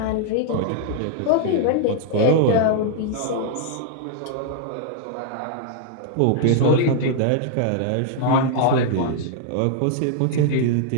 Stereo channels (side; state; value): both; different; correlation -0.01